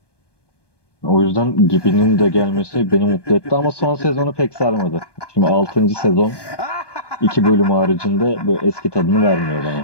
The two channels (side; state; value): right; late; 1.2 ms